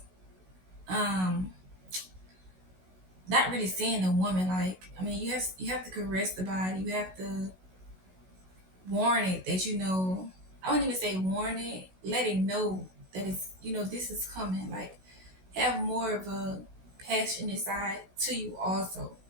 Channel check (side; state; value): left; late; 16 ms